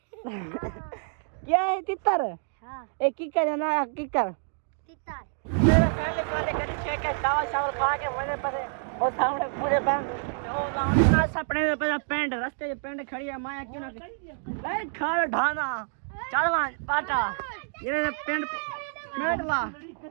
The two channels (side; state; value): left; silent; digital silence